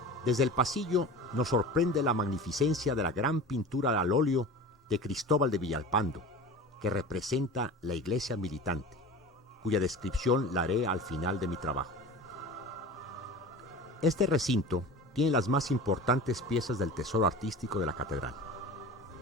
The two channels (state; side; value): normal; both; correlation 0.34